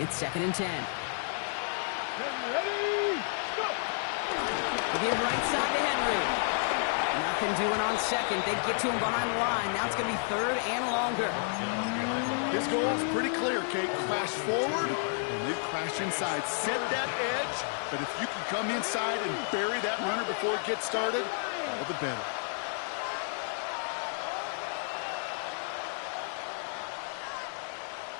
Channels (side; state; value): right; silent; 57 dB below the other